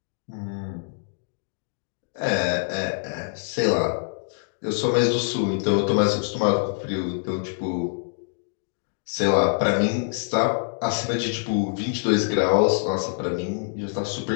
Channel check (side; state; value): right; silent; digital silence